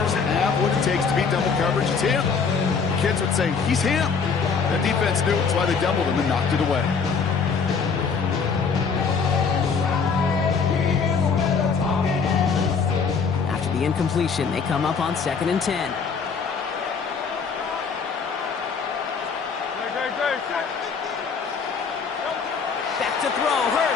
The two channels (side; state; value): right; quieter; 5.5 dB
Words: have what it takes to beat double coverage, it's him. Kids would say, he's him. The defense knew it, that's why they doubled him and knocked it away. After the incompletion, they come up on 2nd and 10. Back to throw,